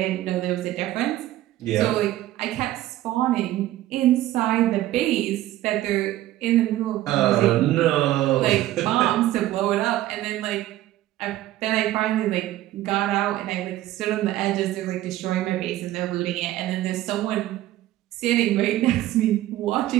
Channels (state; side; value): quieter; left; 14.7 dB